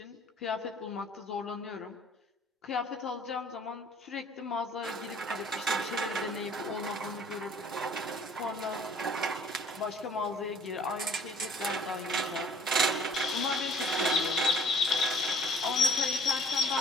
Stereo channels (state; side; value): normal; both; correlation 0.55